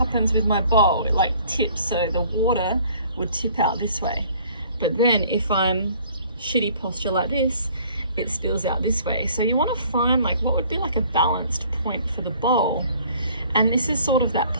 with my bowl? It like tips, so the water would tip out this way. But then if I'm shitty posture like this, it spills out this way. So you want to find like what would be like a balanced point for the bowl. And this is sort of that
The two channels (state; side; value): inverted; both; correlation -0.55